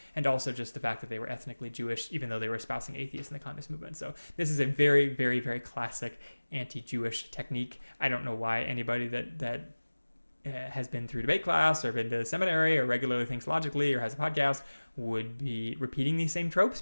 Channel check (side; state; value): both; inverted; correlation -1.00